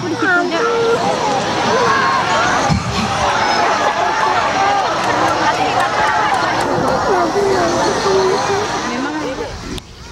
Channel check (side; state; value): both; identical; correlation 1.00